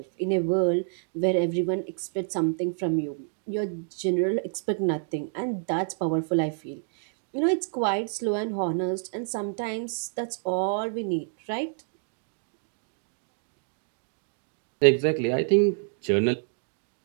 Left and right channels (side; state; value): left; silent; digital silence